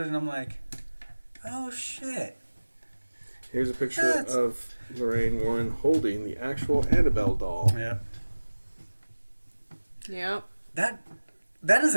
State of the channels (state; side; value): inverted; both; correlation -1.00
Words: and I'm like, oh shit. Here's a picture of Lorraine Warren holding the actual Annabelle doll. Yep. That is